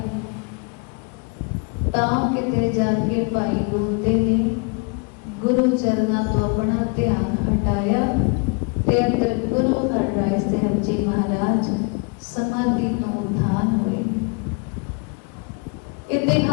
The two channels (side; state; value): right; quieter; 34.0 dB